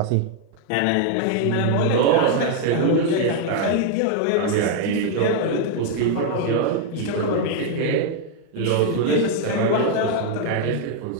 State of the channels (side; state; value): both; different; correlation 0.00